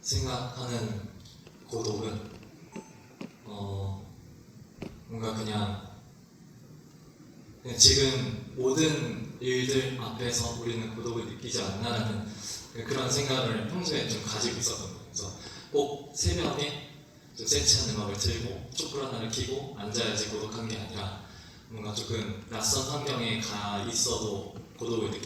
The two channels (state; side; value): identical; both; correlation 1.00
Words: 고독은 뭔가 그냥 지금 모든 일들 앞에서 우리는 고독을 느끼지 않나라는 그런 생각을 평소에 좀 가지고 있었거든요. 그래서 꼭 새벽에 좀 세치한 음악을 틀고 촛불 하나를 켜고 앉아야지 고독한 게 아니라 뭔가 조금 낯선 환경에 가 있어도 고독을